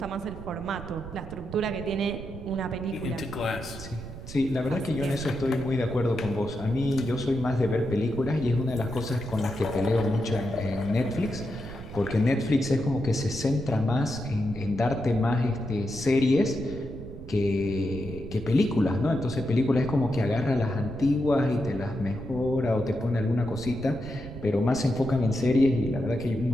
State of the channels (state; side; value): noise; right; rumble, 12 dB below the sound